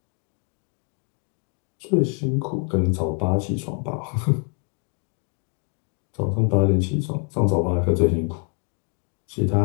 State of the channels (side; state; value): right; quieter; 38.6 dB